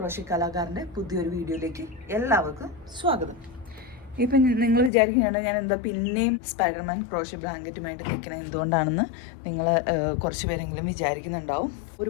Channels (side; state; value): right; drops out; at 4.9 s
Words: കലാകാരൻ്റെ പുതിയൊരു വീഡിയോയിലേക്ക് എല്ലാവർക്കും സ്വാഗതം. ഇപ്പം നിങ്ങൾ വിചാരിക്കുകയാണ് ഞാൻ എന്താ പിന്നെയും സ്പൈഡർമാൻ ക്രോഷ്യ ബ്ലാങ്കറ്റുമായിട്ട് നിൽക്കണത് എന്തുകൊണ്ടാണെന്ന് നിങ്ങൾ കുറച്ച് പേരെങ്കിലും വിചാരിക്കുന്നുണ്ടാവും.